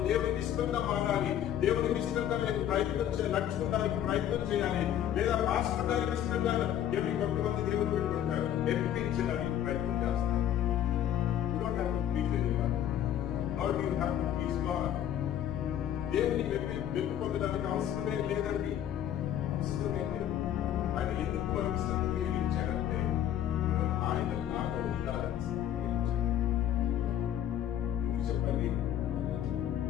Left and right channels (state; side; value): quieter; right; 10.7 dB